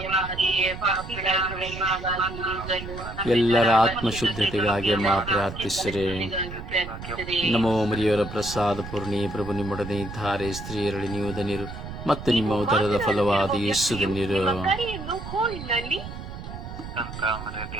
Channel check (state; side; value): noise; right; rumble, 10 dB below the sound